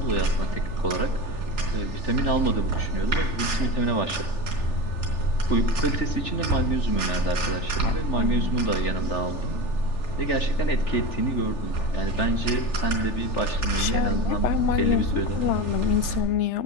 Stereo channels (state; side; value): late; right; 3.4 ms